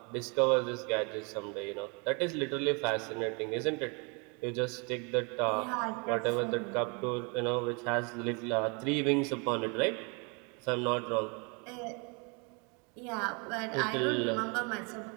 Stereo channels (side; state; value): left; quieter; 32.9 dB